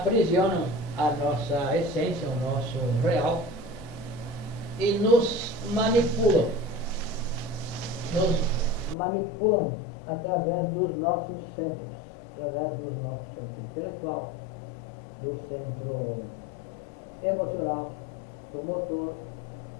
a nossa essência, o nosso real, e nos manipulam através dos nossos centros, através do nosso centro intelectual, do centro emocional, do motor,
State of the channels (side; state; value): right; drops out; at 9.0 s